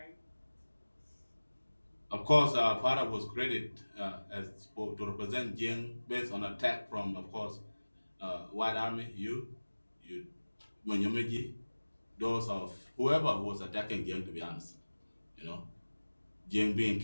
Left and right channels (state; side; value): inverted; both; correlation -1.00